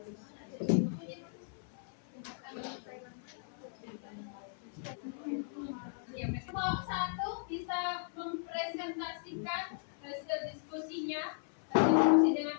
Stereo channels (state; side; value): silent; right; 53 dB below the other